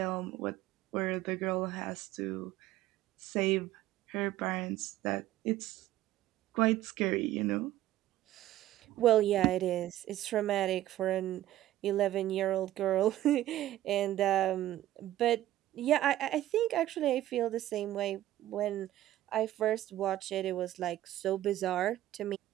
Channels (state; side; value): quieter; left; 14.0 dB